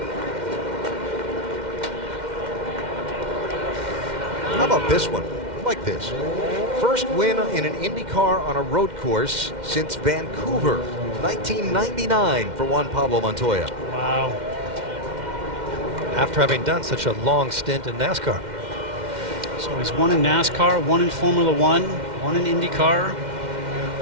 How about this one? I like this. First win in an IndyCar on a road course since Vancouver, 1999 for Juan Pablo Montoya. Wow. After having done such a long stint in NASCAR. So he's won in NASCAR, 1 in Formula 1, 1 in IndyCar.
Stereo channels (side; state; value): left; late; 2.1 ms